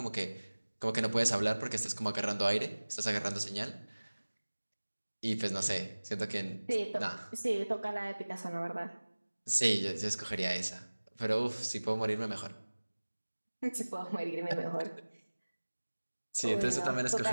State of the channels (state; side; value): inverted; both; correlation -1.00